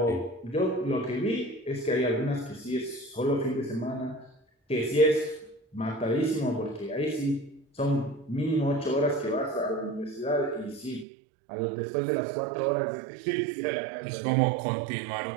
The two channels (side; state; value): left; drops out; at 11.1 s